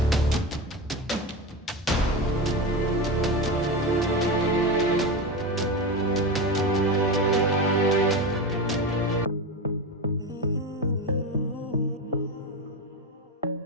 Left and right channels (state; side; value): normal; both; correlation 0.20